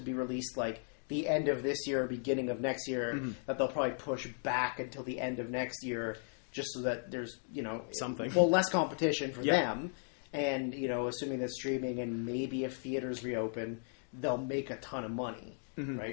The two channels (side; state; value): right; silent; 54 dB below the other